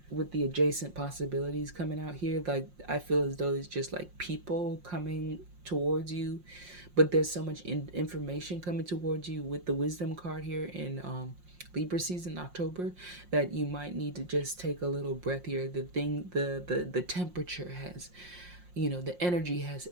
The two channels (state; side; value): late; left; 5.6 ms